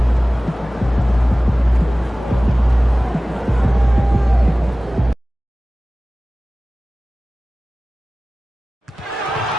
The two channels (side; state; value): both; normal; correlation 0.97